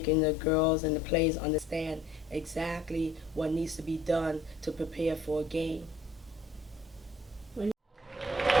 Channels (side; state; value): both; normal; correlation 0.57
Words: the girls and the players understand exactly what needs to be done to prepare for a game.